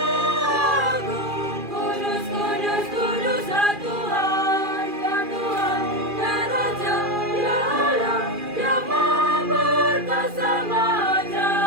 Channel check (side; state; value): left; late; 2.4 ms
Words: Agung. Kudus, kudus, kuduslah Tuhan, ya Tuhan, ya Raja, ya Allah, yang Maha Perkasa, Maha